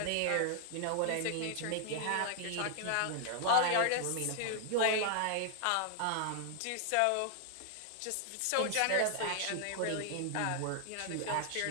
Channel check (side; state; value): both; different; correlation -0.01